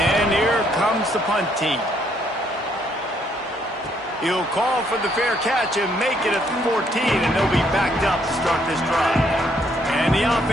here comes the punt team. He'll call for the fair catch and make it at the 14, and they'll be backed up to start this drive. And the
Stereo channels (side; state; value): both; normal; correlation 0.69